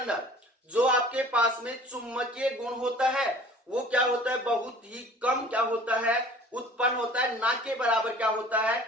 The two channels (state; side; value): normal; both; correlation 0.47